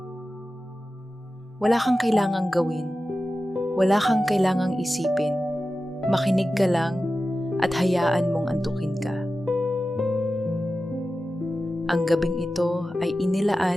Wala kang kailangang gawin. Wala kang kailangang isipin. Makinig ka lang at hayaan mong antukin ka. Ang gabing ito ay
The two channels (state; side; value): normal; both; correlation 0.94